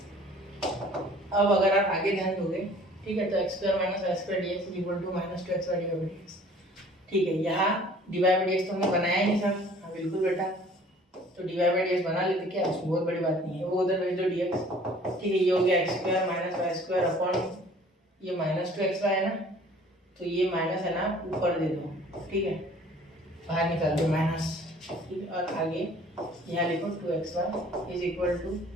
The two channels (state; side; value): normal; both; correlation 0.52